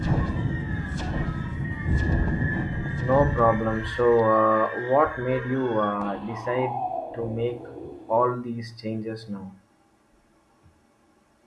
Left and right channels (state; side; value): identical; both; correlation 1.00